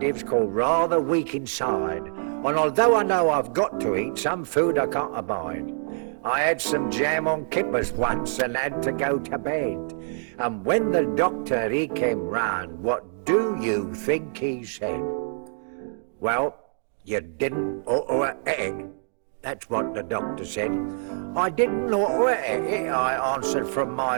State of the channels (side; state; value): left; silent; digital silence